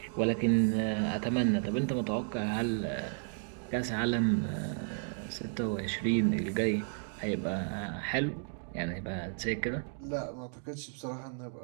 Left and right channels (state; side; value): silent; left; 56 dB below the other